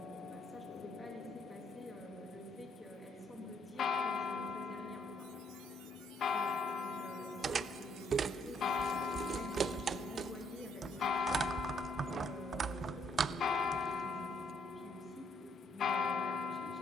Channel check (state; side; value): normal; both; correlation 0.70